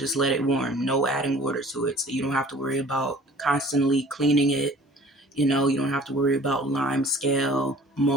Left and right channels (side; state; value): both; normal; correlation 0.49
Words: let it warm. No adding water to it, so you don't have to worry about constantly cleaning it. You don't have to worry about lime scale,